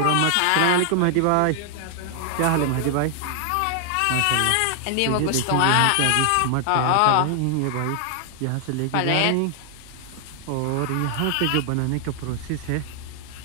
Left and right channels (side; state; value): both; different; correlation 0.00